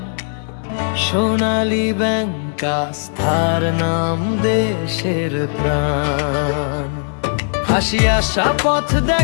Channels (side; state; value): right; silent; 67 dB below the other